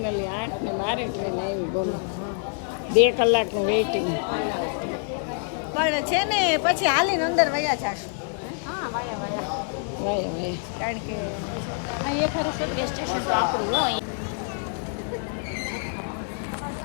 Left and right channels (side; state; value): right; silent; 60 dB below the other